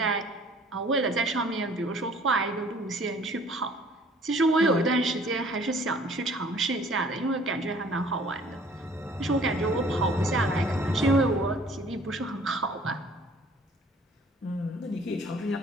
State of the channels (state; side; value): normal; both; correlation 0.55